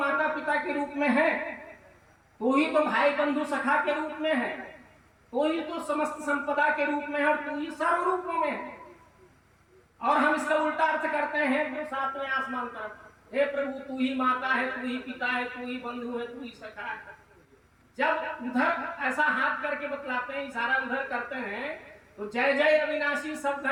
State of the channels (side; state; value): both; identical; correlation 1.00